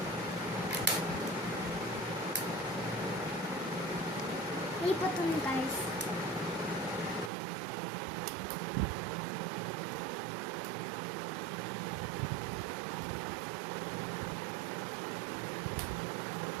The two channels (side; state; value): left; drops out; at 7.3 s